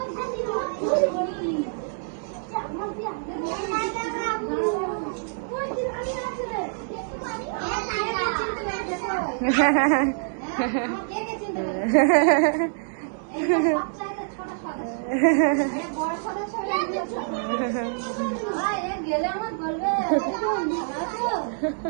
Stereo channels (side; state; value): left; silent; digital silence